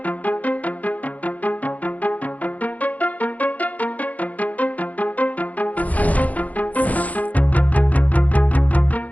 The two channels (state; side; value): late; right; 0.075 ms